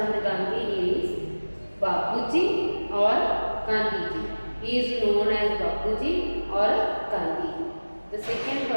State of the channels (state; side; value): inverted; both; correlation -1.00